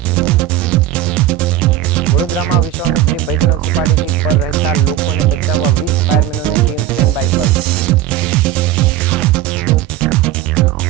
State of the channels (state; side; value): quieter; left; 12.3 dB